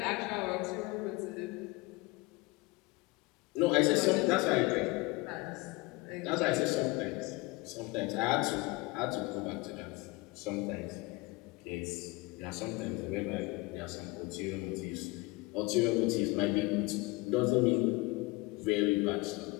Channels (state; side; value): quieter; right; 23.2 dB